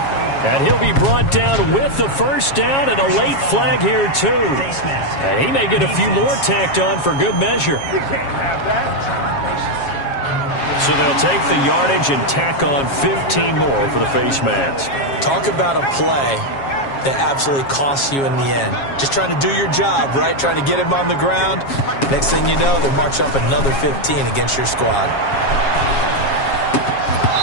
And he'll be brought down with the first down and a late flag here, too. And he may get a few more tacked on for good measure. So they'll take the yardage and tack on 15 more for the face mask. Talk about a play that absolutely costs you in the end. Just trying to do your job, right? Trying to get him on the ground. Next thing you know, they march up another 15 against your squad.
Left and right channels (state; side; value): late; right; 7.3 ms